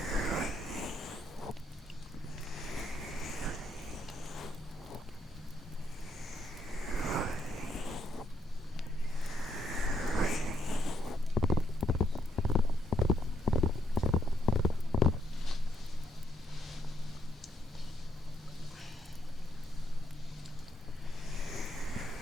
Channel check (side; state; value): both; normal; correlation 0.77